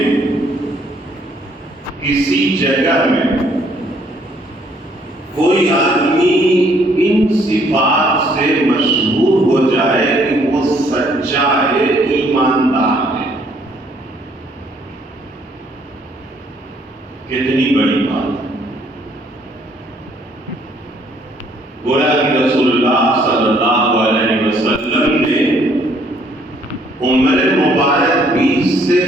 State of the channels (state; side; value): normal; both; correlation 0.65